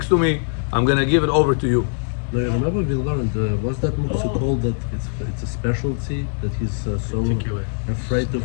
to me. I'm going to give it over to you. No, you remember we learned, what's that muktzah called, that it's a specialty, that he's so afraid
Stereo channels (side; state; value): right; silent; 65 dB below the other